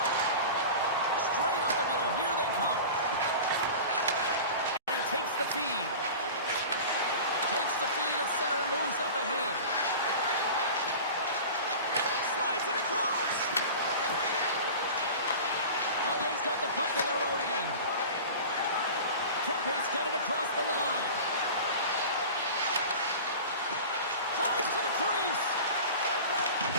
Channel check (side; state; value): both; inverted; correlation -0.35